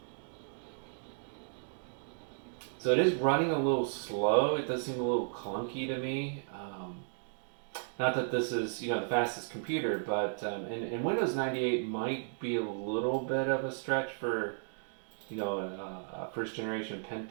So it is running a little slow. It does seem a little clunky to me. Not that this is the fastest computer, but and Windows 98 might be a little bit of a stretch for a first generation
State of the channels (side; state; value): left; silent; digital silence